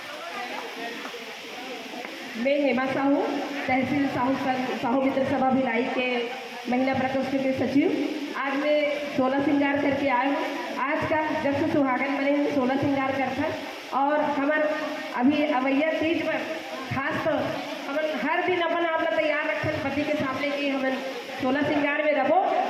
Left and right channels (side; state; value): both; identical; correlation 1.00